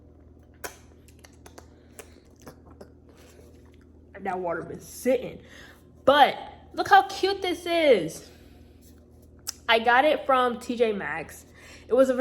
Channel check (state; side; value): identical; both; correlation 1.00